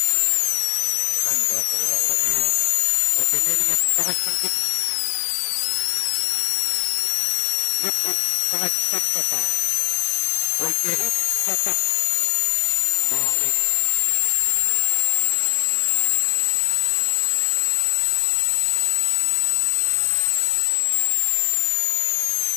Renkaat on ihan loppu. Niin on. Oikee 4, 80. Nyppy 200. Oikee 1, 100. Maali.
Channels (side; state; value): right; silent; 65 dB below the other